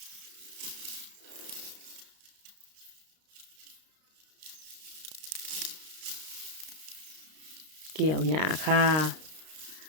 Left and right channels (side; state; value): left; late; 32 ms